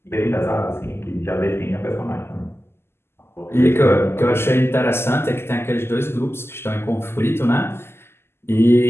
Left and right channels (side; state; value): right; late; 0.12 ms